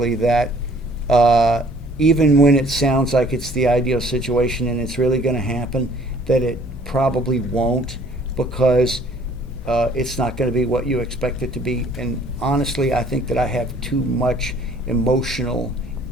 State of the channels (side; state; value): both; normal; correlation 0.56